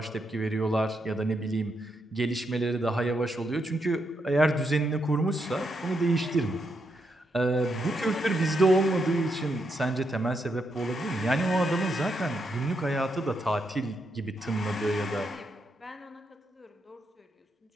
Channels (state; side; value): normal; both; correlation 0.81